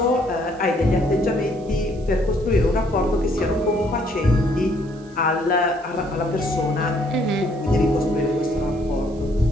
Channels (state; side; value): noise; right; hiss, 28 dB below the sound